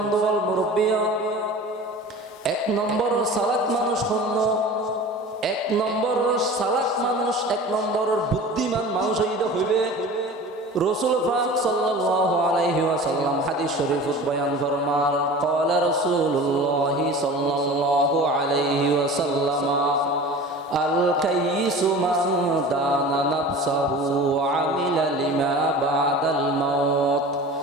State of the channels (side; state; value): both; normal; correlation 0.38